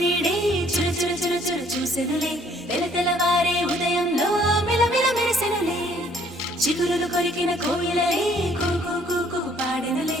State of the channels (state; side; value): normal; both; correlation 0.62